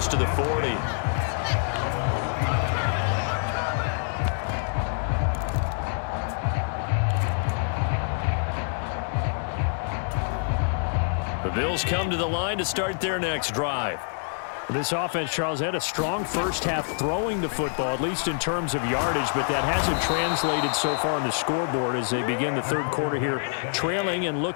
to the 40. The Bills come to the line to start their next drive. This offense, Charles, had a strong first half throwing the football, at least in terms of yardage, but that hasn't translated so far on the scoreboard as they begin the third quarter here, trailing and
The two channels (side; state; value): right; silent; digital silence